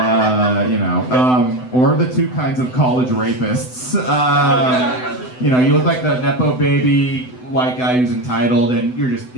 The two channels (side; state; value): right; late; 7.9 ms